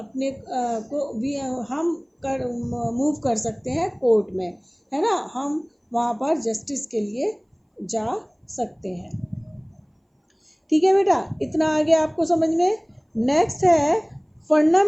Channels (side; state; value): both; identical; correlation 1.00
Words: को भी हम मूव कर सकते हैं कोर्ट में, है ना, हम वहाँ पर जस्टिस के लिए जा सकते हैं। ठीक है बेटा, इतना आगे आपको समझ में। नेक्स्ट है